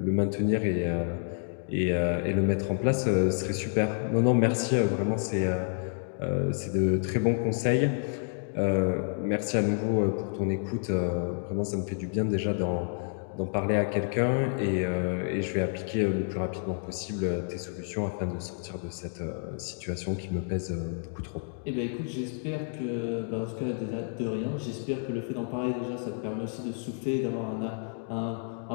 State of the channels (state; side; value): silent; right; 58 dB below the other